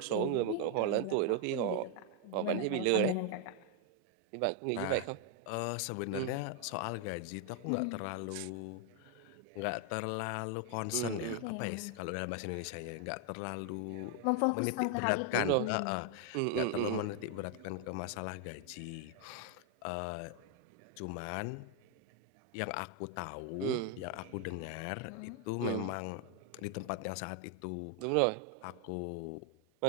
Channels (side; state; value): both; different; correlation 0.00